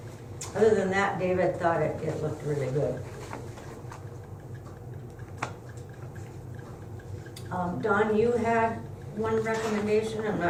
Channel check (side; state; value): both; identical; correlation 1.00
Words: Other than that, David thought it looked really good. Don, you had one recommendation, I'm